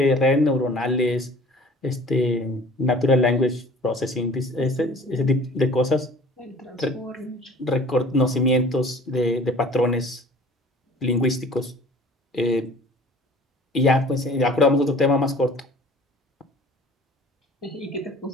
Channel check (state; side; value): normal; both; correlation 0.47